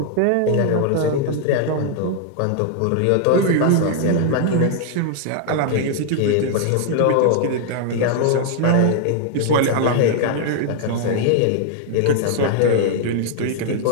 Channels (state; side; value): different; both; correlation 0.00